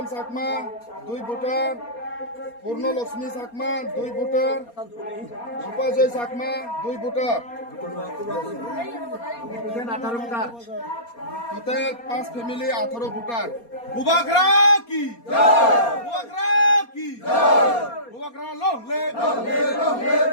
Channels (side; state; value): right; late; 4.3 ms